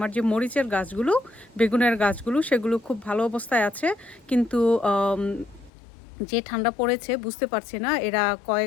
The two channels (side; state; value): right; drops out; at 5.7 s